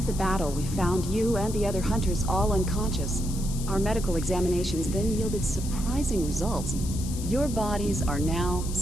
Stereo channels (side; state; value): left; noise; hiss, 12 dB below the sound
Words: the battle, we found you and the other hunters all unconscious. Our medical examinations then yielded surprising results. Your bodies are now,